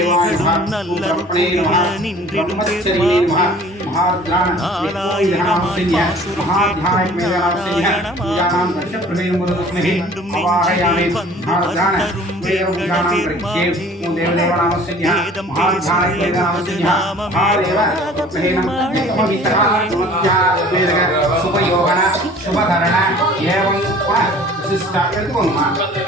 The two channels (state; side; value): normal; both; correlation 0.48